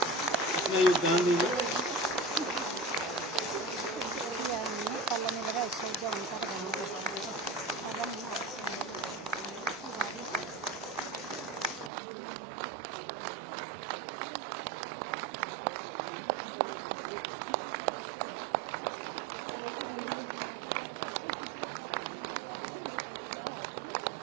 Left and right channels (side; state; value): left; drops out; at 11.9 s